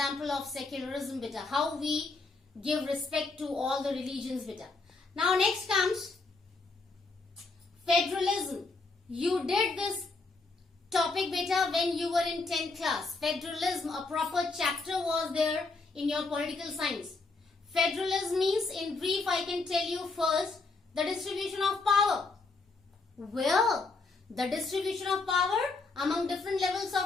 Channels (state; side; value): quieter; right; 3.8 dB